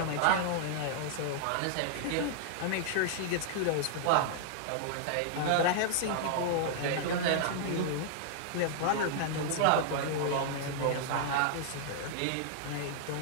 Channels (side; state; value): both; different; correlation -0.01